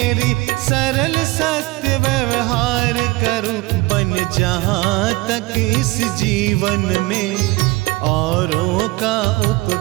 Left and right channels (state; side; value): quieter; left; 21.9 dB